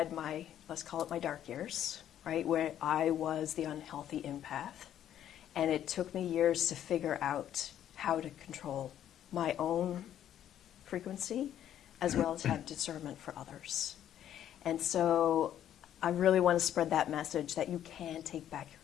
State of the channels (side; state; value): right; quieter; 10.8 dB